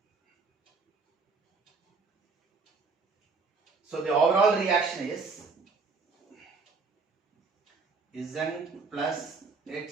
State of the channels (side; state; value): left; quieter; 4.5 dB